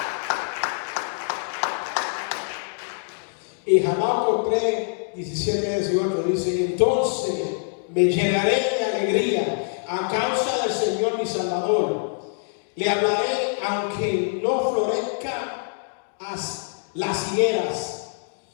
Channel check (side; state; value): right; silent; 62 dB below the other